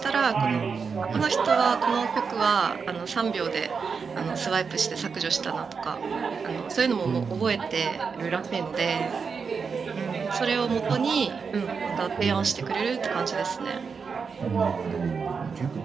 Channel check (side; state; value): left; quieter; 5.5 dB